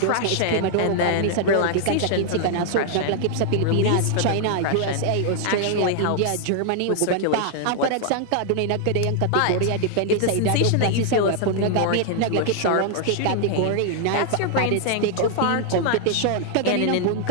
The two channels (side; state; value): both; different; correlation 0.00